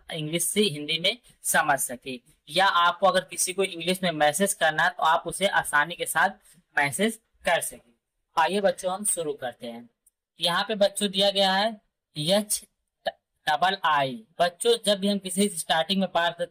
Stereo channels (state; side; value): identical; both; correlation 1.00